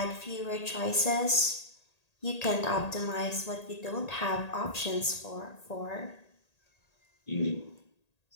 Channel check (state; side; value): late; right; 1.8 ms